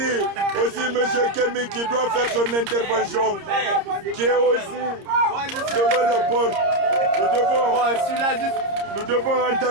aussi M. Kemi qui doit faire son intervention, qui est aussi devant la porte. Nous devons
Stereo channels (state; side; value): late; left; 30 ms